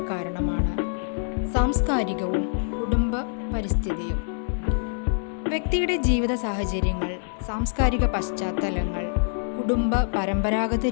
കാരണമാണ് സാംസ്കാരികവും കുടുംബ പരിസ്ഥിതിയും. വ്യക്തിയുടെ ജീവിത സാഹചര്യങ്ങൾ, സാംസ്കാരിക പശ്ചാത്തലങ്ങൾ, കുടുംബ പരമ്പരാഗത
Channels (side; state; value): right; silent; 62 dB below the other